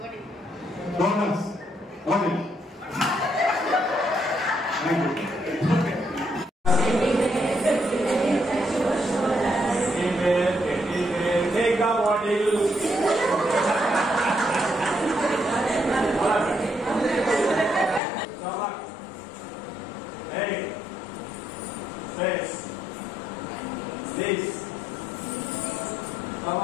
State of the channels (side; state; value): right; drops out; at 18.0 s